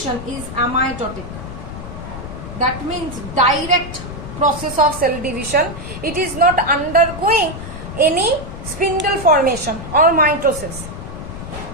is amitotic. That means direct process of cell division. It is not undergoing any spindle formation or mitosis.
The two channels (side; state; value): left; noise; rumble, 10 dB below the sound